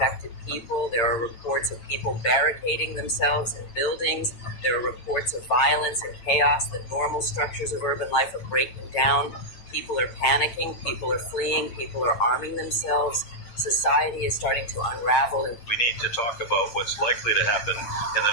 people. There are reports of people barricading themselves in buildings. There are reports of violence and chaos. The normal structures of urban life are breaking down. People are panicking. People are fleeing. People are arming themselves. Society is starting to unravel. We need to talk about what's likely to happen in the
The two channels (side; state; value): right; late; 8.8 ms